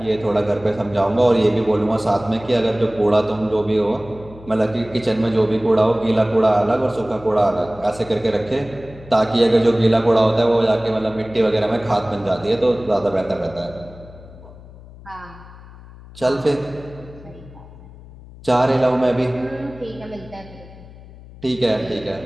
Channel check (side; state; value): left; noise; hum, 19 dB below the sound